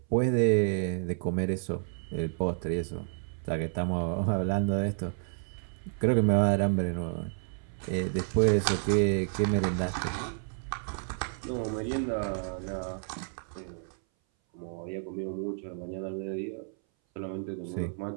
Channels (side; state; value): left; silent; 57 dB below the other